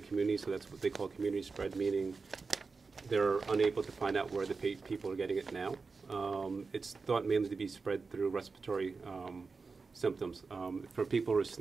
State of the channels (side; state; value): left; quieter; 4.4 dB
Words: so that's what they call community spread, meaning they're unable to find out where the people are getting it now. It's thought mainly to be spread through respiratory symptoms. For people who are